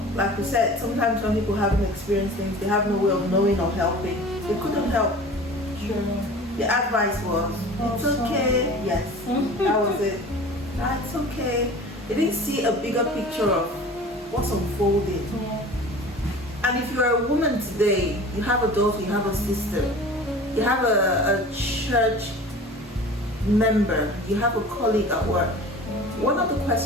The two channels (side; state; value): both; normal; correlation 0.40